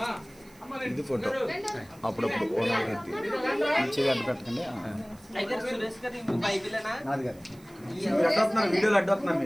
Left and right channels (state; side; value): noise; right; hiss, 26 dB below the sound